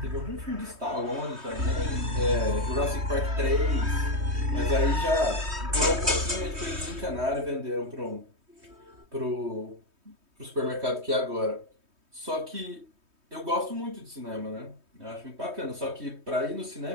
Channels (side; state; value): left; late; 3.2 ms